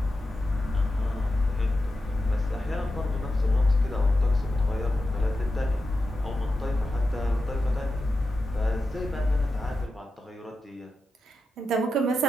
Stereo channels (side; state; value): both; normal; correlation 0.90